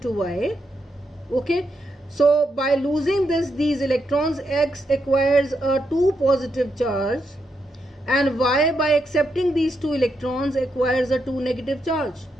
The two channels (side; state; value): both; normal; correlation 0.82